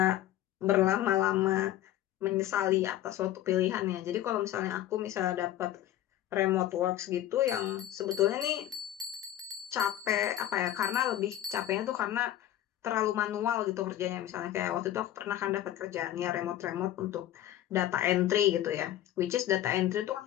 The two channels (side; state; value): right; quieter; 12.7 dB